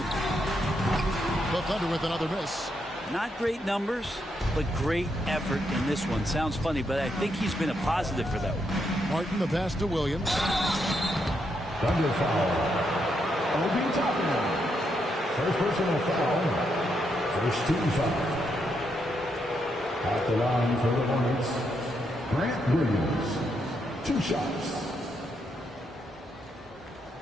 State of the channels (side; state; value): both; normal; correlation 0.79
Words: The Thunder with another miss. Not great numbers, but great effort in this one. Sounds funny, but I think he's been a positive for that one. Martin, the pass to Williams. Thunder foul. Obi Toppin. First personal foul. First team foul. At the line for the Hornets, Grant Williams. 2 shots.